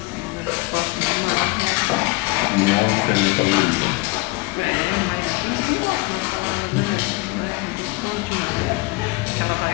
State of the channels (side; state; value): right; quieter; 24.1 dB